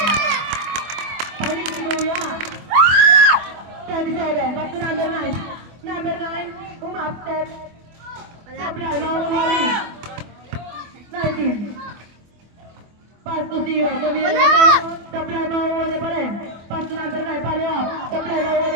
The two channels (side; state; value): left; late; 24 ms